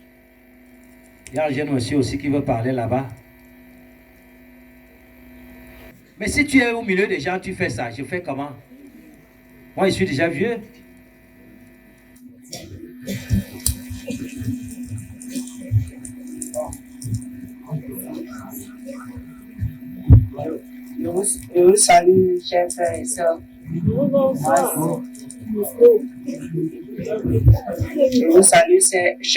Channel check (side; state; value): both; identical; correlation 1.00